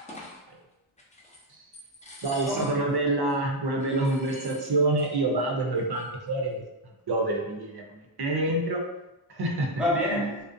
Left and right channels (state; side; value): normal; both; correlation 0.03